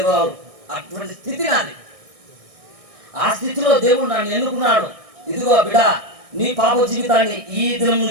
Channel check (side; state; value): left; late; 1.6 ms